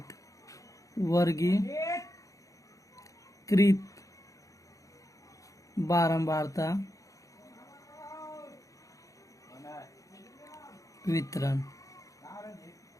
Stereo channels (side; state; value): right; late; 0.16 ms